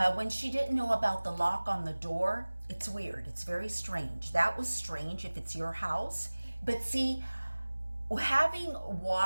When she didn't know about the lock on the door, it's weird. It's very strange. That was strange if it's your house. But see, having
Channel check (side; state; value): both; inverted; correlation -1.00